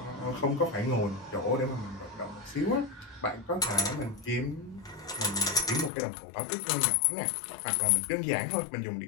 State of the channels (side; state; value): right; drops out; at 5.9 s